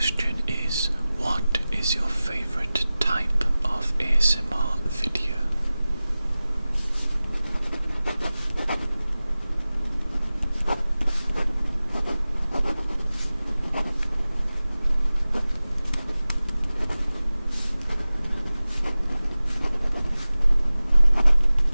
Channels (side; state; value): both; inverted; correlation -0.97